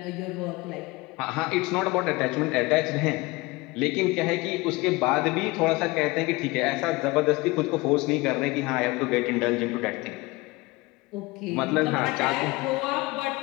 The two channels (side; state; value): right; quieter; 22.9 dB